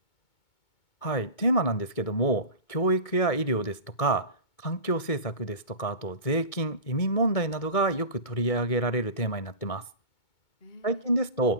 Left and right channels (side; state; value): right; late; 2.2 ms